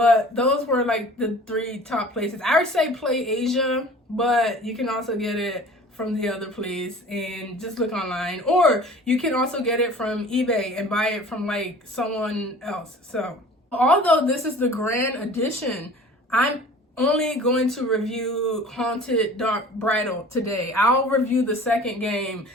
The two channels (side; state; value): both; normal; correlation 0.45